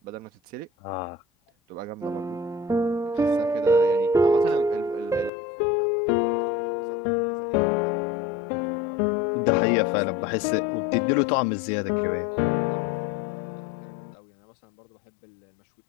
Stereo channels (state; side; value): drops out; right; at 5.3 s